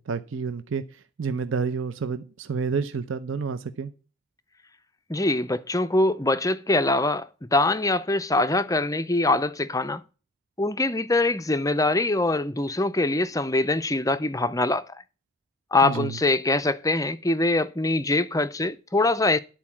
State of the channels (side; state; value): both; normal; correlation 0.41